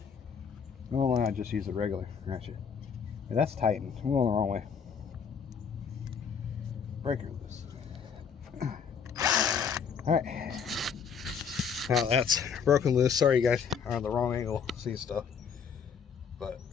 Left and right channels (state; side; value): quieter; right; 6.6 dB